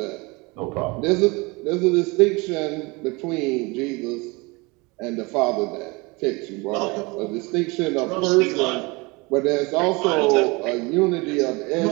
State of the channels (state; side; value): quieter; left; 26.1 dB